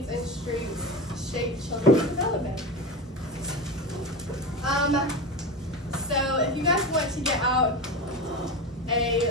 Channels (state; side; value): normal; both; correlation 0.23